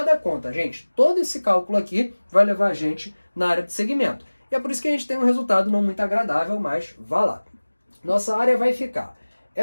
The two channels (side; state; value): both; inverted; correlation -1.00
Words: a conta, gente. Todo esse cálculo aqui vai levar a gente na área de segmento. E é por isso que a gente tem um resultado não muito agradável, mas vá lá. Nossa área vai ficar.